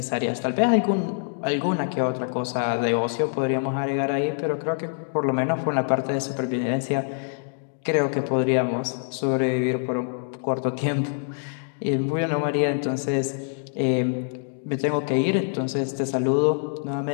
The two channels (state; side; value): silent; right; digital silence